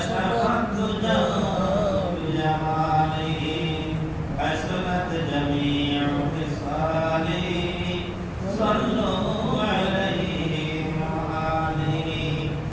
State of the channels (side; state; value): both; identical; correlation 1.00